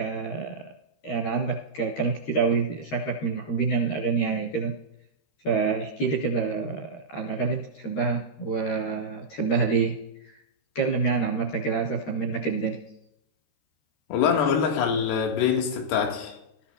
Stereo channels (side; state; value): right; late; 13 ms